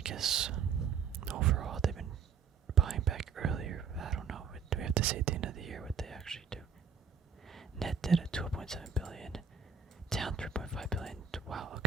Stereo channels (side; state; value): left; quieter; 6.3 dB